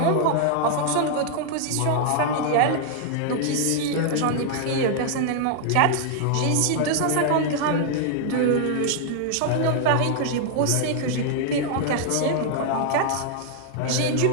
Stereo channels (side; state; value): both; different; correlation 0.00